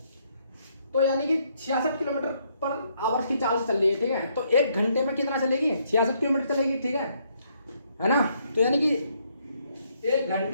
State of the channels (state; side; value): inverted; both; correlation -0.72